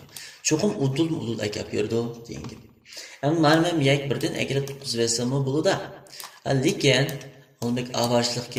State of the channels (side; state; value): both; identical; correlation 1.00